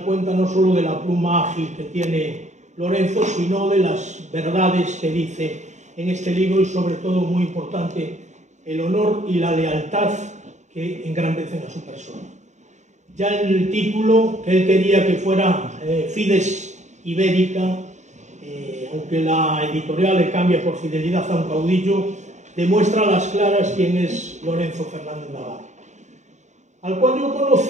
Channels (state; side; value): late; left; 0.34 ms